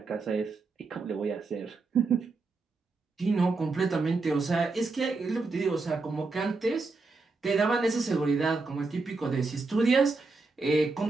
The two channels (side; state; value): left; quieter; 3.9 dB